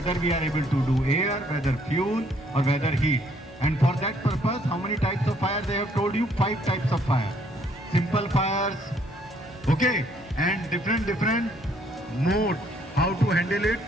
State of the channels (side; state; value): both; normal; correlation 0.66